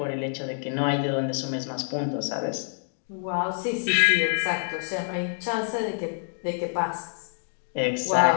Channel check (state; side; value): silent; right; digital silence